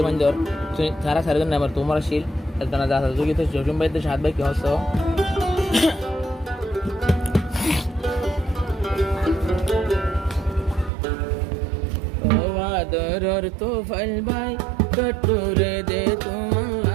জ্বর তারা সারিদিন নেবার তোমার শিল একদানা যা যোগী তো জসিম ভাই তো শাহেদ ভাই কি হচ্ছে আদরর তুফাইল ভাই পেটুরে দে তোমার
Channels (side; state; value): left; drops out; at 10.9 s